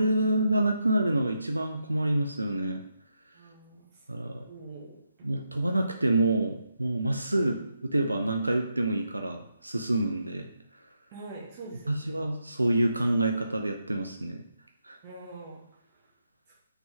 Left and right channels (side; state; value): both; inverted; correlation -0.83